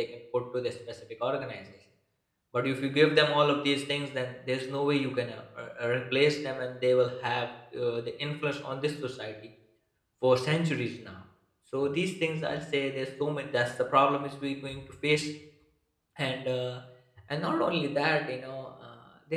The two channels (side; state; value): both; identical; correlation 1.00